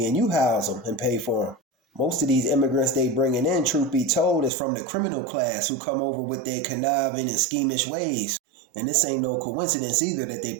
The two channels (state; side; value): drops out; left; at 4.5 s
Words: and you house them and pay for them. Most of these immigrants they bringing in, truth be told, is from the criminal class who come over with their conniving and schemish ways. And this ain't no coincidence either that they